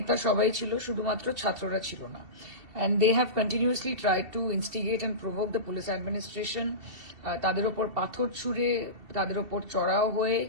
সবাই ছিল, শুধুমাত্র ছাত্ররা ছিল না। And they have continuously tried to instigate and provoke the police administration. তাদের ওপর পাথর ছুঁড়ে, তাদের ওপর চড়াও হয়ে,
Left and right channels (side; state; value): left; late; 2.7 ms